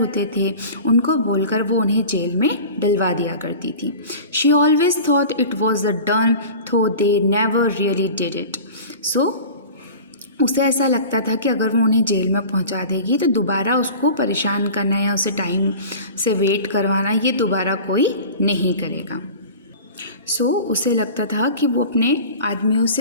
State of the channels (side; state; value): both; inverted; correlation -0.37